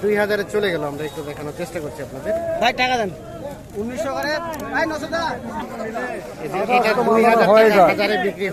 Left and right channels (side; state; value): both; identical; correlation 1.00